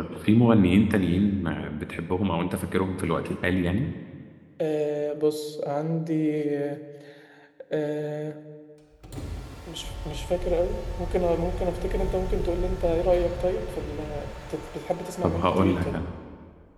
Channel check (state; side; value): identical; both; correlation 1.00